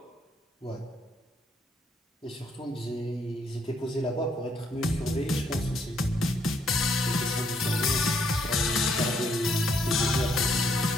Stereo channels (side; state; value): both; normal; correlation 0.71